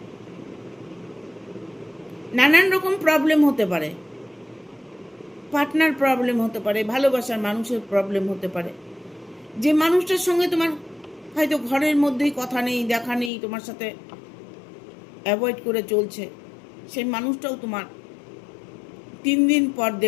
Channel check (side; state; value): right; drops out; at 13.3 s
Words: নানান রকম প্রবলেম হতে পারে, পার্টনার প্রবলেম হতে পারে, ভালোবাসার মানুষের প্রবলেম হতে পারে। যে মানুষটার সঙ্গে তোমার হয়তো ঘরের মধ্যেই কথা নেই, দেখা নেই, তোমার সাথে অ্যাভয়েড করে চলছে, সেই মানুষটাও তোমার 3 দিন পর